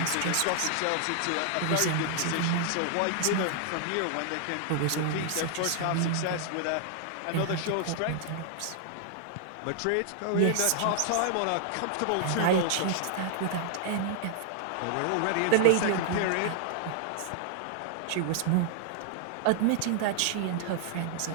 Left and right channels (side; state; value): both; different; correlation -0.01